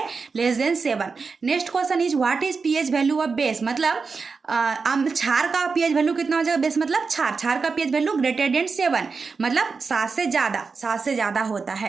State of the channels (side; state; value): left; quieter; 4.8 dB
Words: less than 7। Next question is what is pH value of base, मतलब क्षार का पीएच वैल्यू कितना हो जाएगा, बेस मतलब क्षार, क्षार का पीएच वैल्यू ग्रेटर देन 7, मतलब 7 से ज़्यादा, 7 से ज़्यादा होता